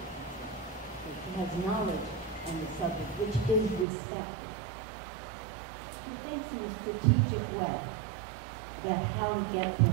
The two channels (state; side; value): drops out; left; at 3.9 s